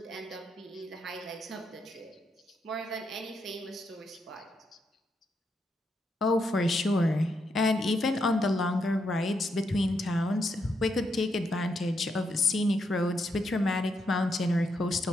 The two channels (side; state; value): both; normal; correlation 0.80